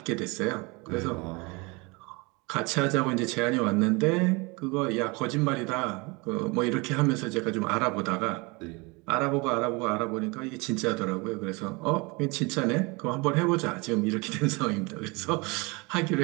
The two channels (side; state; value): left; quieter; 27.2 dB